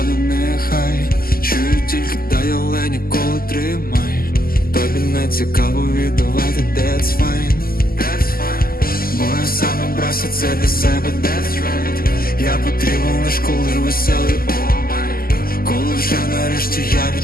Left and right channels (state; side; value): late; right; 0.42 ms